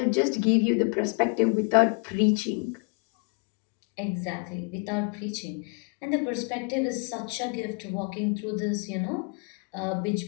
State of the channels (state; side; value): quieter; right; 35.7 dB